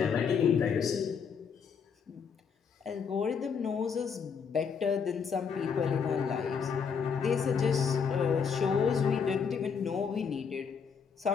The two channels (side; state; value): right; quieter; 6.4 dB